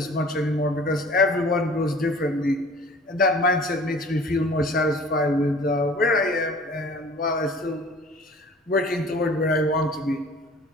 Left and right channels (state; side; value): normal; both; correlation 0.47